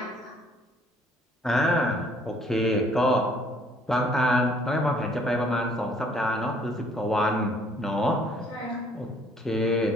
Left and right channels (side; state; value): both; normal; correlation 0.61